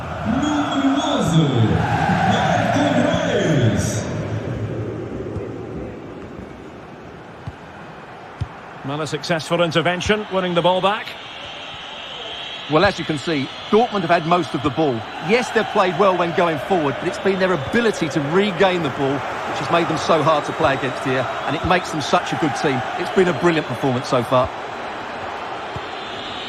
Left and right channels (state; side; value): identical; both; correlation 1.00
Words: Well, a successful intervention, winning the ball back. Well, as you can see, Dortmund have had most of the ball. Yes, they've played well when going forward, but it's been their ability to regain the ball which has made them so hard to play against here, and it makes them such a good team. It's been a brilliant performance so far.